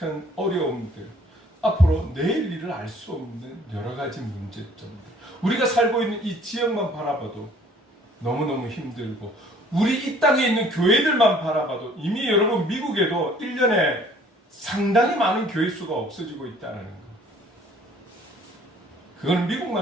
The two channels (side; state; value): both; normal; correlation 0.56